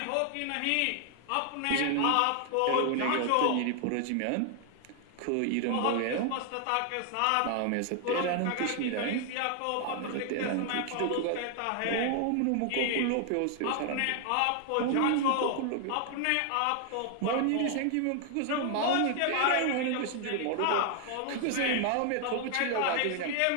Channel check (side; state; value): both; different; correlation 0.00